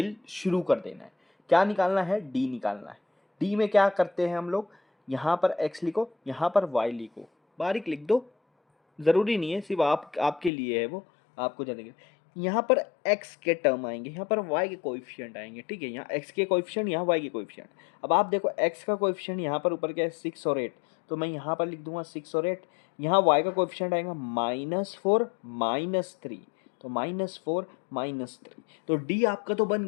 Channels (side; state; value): right; drops out; at 10.5 s